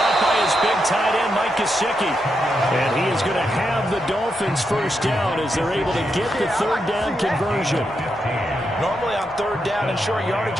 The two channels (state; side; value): normal; both; correlation 0.83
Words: by his big tight end, Mike Gesicki. And he is going to have the Dolphins first down as they're able to get the 3rd down conversion. Normally on 3rd down and short yardage,